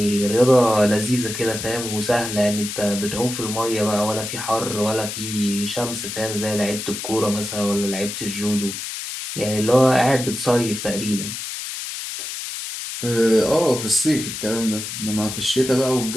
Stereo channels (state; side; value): noise; left; hiss, 7 dB below the sound